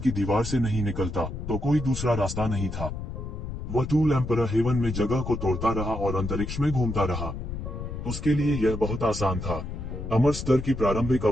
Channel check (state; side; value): noise; left; rumble, 7 dB below the sound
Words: दीवार से नहीं निकलता तो कोई दूसरा रास्ता नहीं था। वह टूल एम्परर हेवन में जगह को तोड़ता रहा और अंतरिक्ष में घूमता रहा। उसके लिए यह बहुत आसान था। अमर स्तर की प्रारंभिक